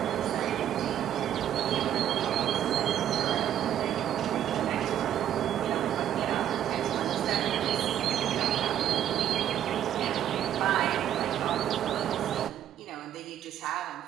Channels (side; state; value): left; quieter; 10.7 dB